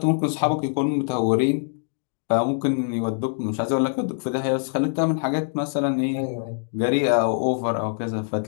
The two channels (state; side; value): silent; right; digital silence